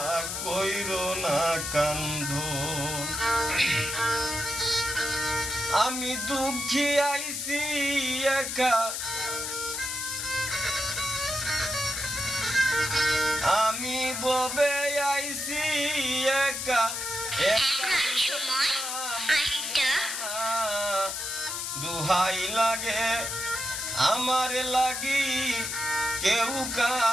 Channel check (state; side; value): noise; left; hiss, 3 dB below the sound